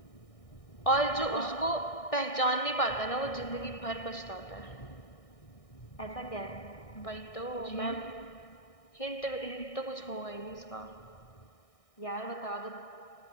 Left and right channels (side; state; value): right; late; 1.6 ms